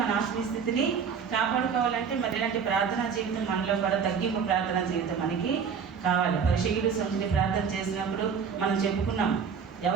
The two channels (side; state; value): left; quieter; 6.5 dB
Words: మన ఆత్మీయ స్థితిని కాపాడుకోవాలంటే మరి ఇలాంటి ప్రార్థనా జీవితం మనలో కూడా తగ్గింపు ప్రార్థనా జీవితం మనకి కావాలి. పరిశీలుడు సంఘుని ప్రార్థన చేసినప్పుడు మనం చెప్పుకున్నాం,